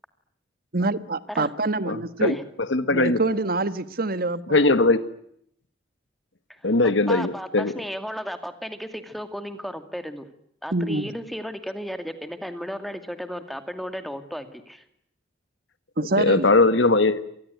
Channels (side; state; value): both; normal; correlation 0.05